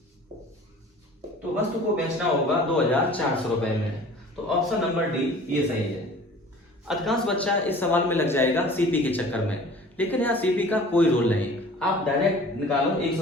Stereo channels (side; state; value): both; normal; correlation 0.46